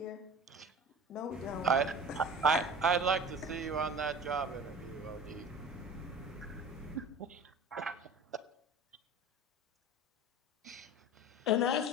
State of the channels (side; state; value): both; normal; correlation 0.38